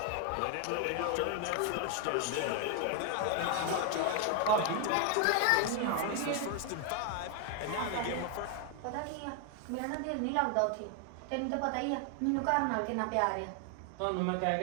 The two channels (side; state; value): both; different; correlation 0.00